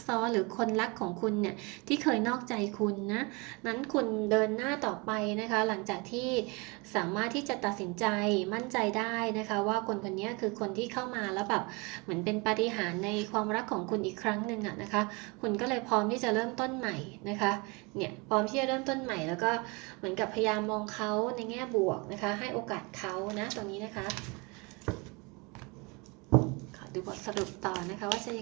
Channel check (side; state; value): left; quieter; 28.6 dB